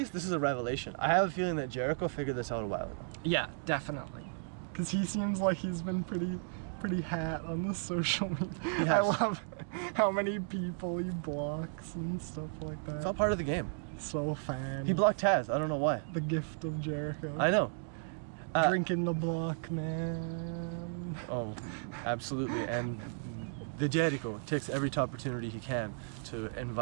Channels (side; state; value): left; silent; digital silence